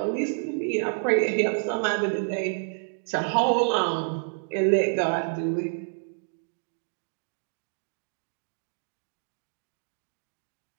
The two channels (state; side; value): silent; left; digital silence